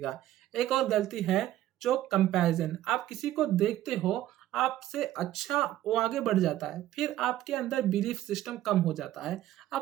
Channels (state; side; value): quieter; left; 13.7 dB